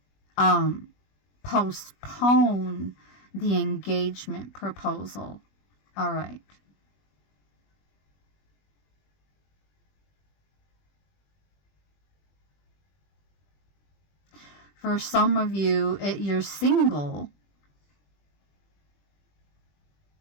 postpone the engagement proposal. All right. For some of you, you're single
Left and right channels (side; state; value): right; late; 20 ms